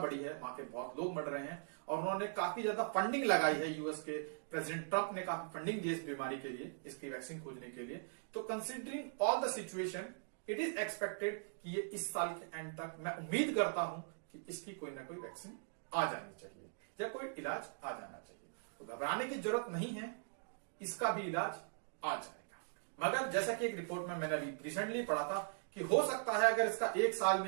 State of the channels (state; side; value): silent; left; digital silence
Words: है, वहां के बहुत लोग मर रहे हैं और उन्होंने काफी ज्यादा फंडिंग लगाई है। यूएस के प्रेसिडेंट ट्रंप ने काफी फंडिंग दी इस बीमारी के लिए, इसकी वैक्सीन खोजने के लिए। तो considering all the situation, it is expected कि ये इस साल के एंड तक, मैं उम्मीद करता हूं कि इसकी कोई ना कोई वैक्सीन आ जानी चाहिए या कोई इलाज आ जाना चाहिए। तो घबराने की जरूरत नहीं है, इसका भी इलाज आ जाएगा। मगर जैसा कि एक रिपोर्ट में मैंने रिसेंटली पढ़ा था कि हो सकता है अगर इसका 1 साल